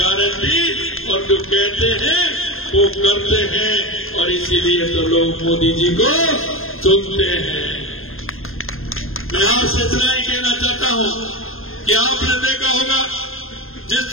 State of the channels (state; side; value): late; right; 0.60 ms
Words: और जो कहते हैं वो करते हैं, और इसीलिए तो लोग मोदी जी को चुनते हैं। मैं आपसे इतना ही कहना चाहता हूं कि आपने देखा होगा जिस